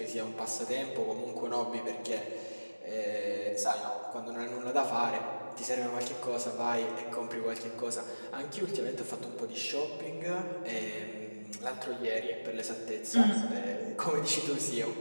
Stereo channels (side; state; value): both; inverted; correlation -1.00